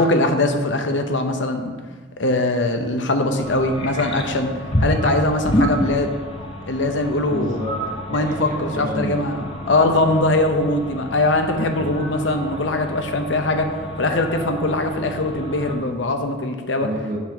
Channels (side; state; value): both; normal; correlation 0.16